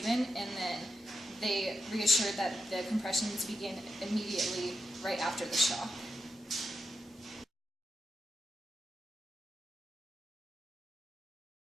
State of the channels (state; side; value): normal; both; correlation 0.86